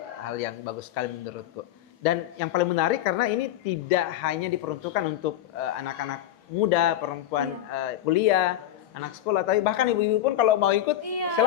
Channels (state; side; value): quieter; right; 12.3 dB